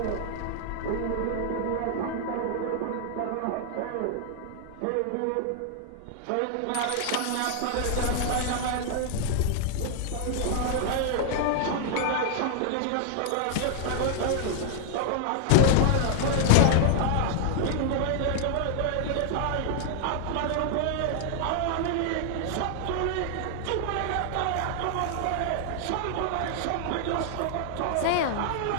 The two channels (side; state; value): both; different; correlation 0.00